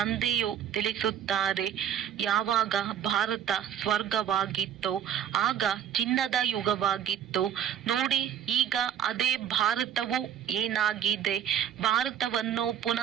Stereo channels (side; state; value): left; quieter; 9.4 dB